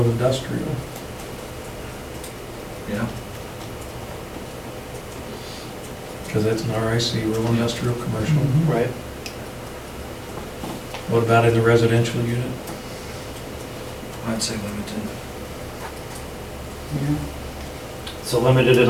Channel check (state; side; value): identical; both; correlation 1.00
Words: industrial. Yeah. Cause that's an RIC, rural industrial commercial. Mhm. Right. What about in the residential unit? I'd say limited. Yeah. So limited in